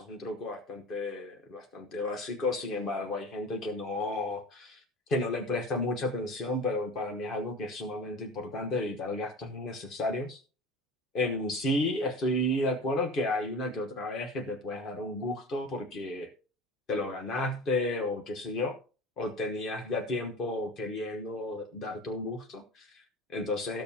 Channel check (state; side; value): normal; both; correlation 0.35